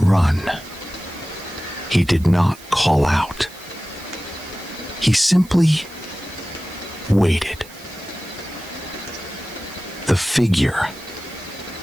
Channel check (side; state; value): right; noise; hiss, 21 dB below the sound